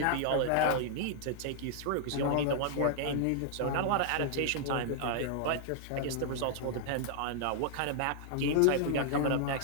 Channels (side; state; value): both; different; correlation -0.01